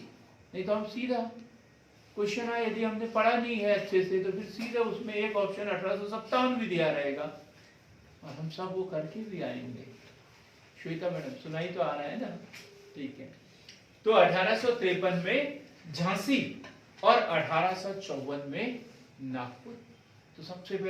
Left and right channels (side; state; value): both; identical; correlation 1.00